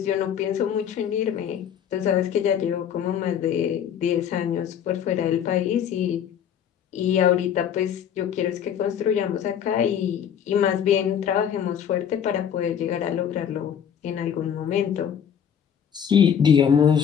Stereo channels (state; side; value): quieter; right; 8.6 dB